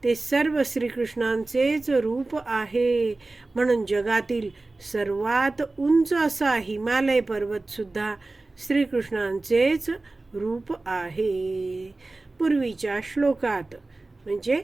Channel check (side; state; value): left; quieter; 3.2 dB